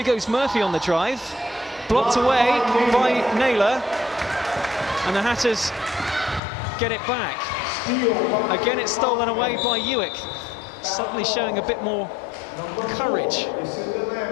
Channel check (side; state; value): right; drops out; at 6.4 s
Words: goes Murphy on the drive. Blocked away by Naylor. And the Hatters get it back. Again, it's stolen away by UWIC. Suddenly showing a bit more courage.